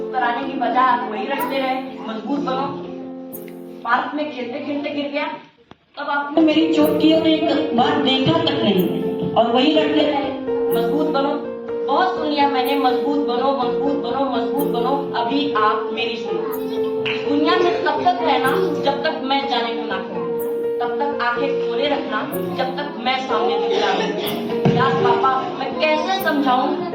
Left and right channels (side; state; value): both; identical; correlation 1.00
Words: कराने की बजाय आप वही रटते रहे, मजबूत बनो। पार्क में खेलते खेलते गिर गया, तब आपने मेरी चोट की और एक बार देखा तक नहीं और वही रटते रहे, मजबूत बनो। बहुत सुन लिया मैंने, मजबूत बनो, मजबूत बनो, मजबूत बनो। अभी आप मेरी सुनो। दुनिया में तब तक रहना जब तक मैं जाने को ना कहूं, तब तक आंखें खोले रखना जब तक मैं सामने दिख रहा हूं। यार पापा मैं कैसे समझाऊं